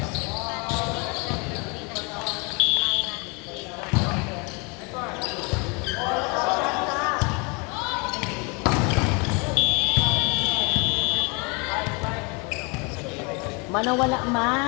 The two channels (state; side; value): quieter; right; 31.0 dB